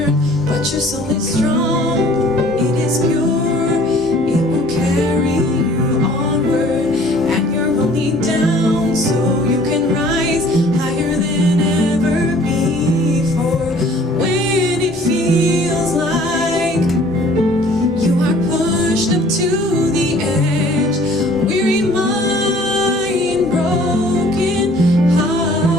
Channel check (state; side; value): normal; both; correlation 0.54